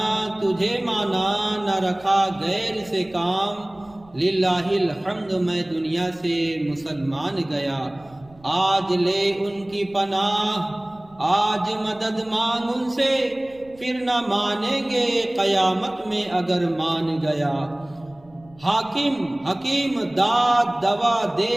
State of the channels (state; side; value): noise; right; rumble, 26 dB below the sound